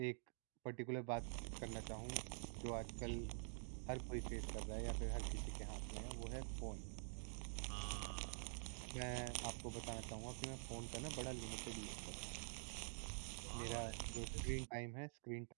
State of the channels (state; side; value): silent; left; digital silence